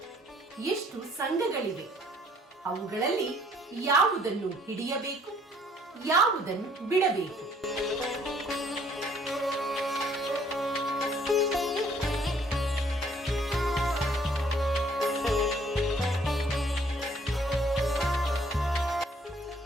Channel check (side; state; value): both; normal; correlation 0.61